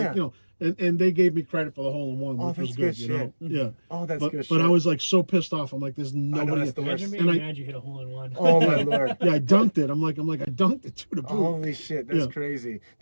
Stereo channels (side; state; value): both; inverted; correlation -1.00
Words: you know, and they gave me credit for the hole in one, which that's was good. good You know, shit. yeah. Oh, that's but, good But I shit. was like so pissed off. I'm like, there's nobody. that's the worst. Imagine being And I- mad you hit a hole in one. Oh, my Lord. Yeah, I dunked it. I'm like, I dunked it to the boot. Holy shit, that's Yeah. crazy.